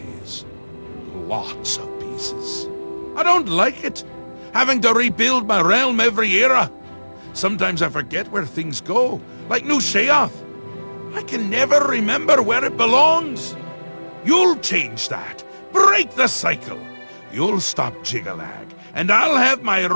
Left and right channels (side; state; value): both; inverted; correlation -1.00